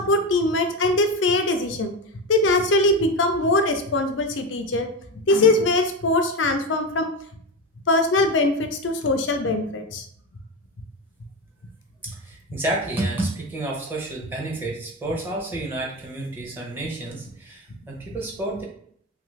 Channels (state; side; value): normal; both; correlation 0.17